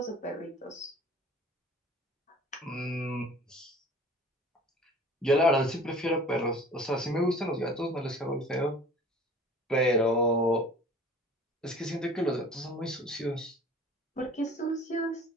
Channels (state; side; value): normal; both; correlation 0.46